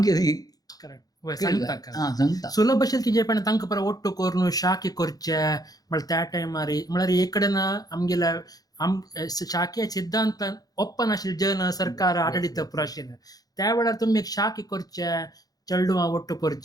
सुलभ असेल की जे पण तांकां परत ओट्टो करून शाखे करचे म्हळ्यार त्या टायमार म्हळ्यार एक कडेन आमगेल्या शाखे सिद्धांतान ओप्पन आशिल्ले जन सरकार आडळीत पुरो आशिल्ले. त्या वेळार तुमी एक शाखे करचे चेडवां ओट्टो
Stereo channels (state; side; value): late; right; 0.18 ms